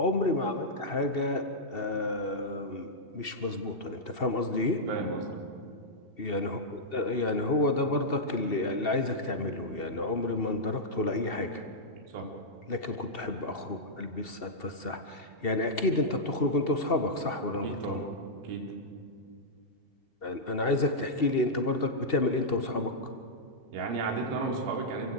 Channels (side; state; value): right; late; 2.7 ms